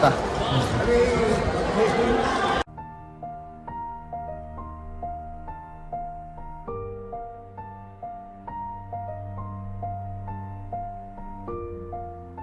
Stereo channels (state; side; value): identical; both; correlation 1.00